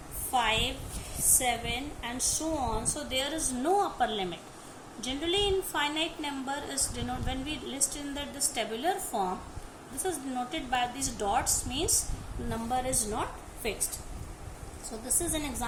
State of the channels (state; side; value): identical; both; correlation 1.00